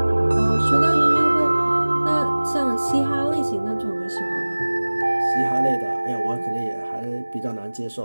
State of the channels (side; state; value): both; inverted; correlation -1.00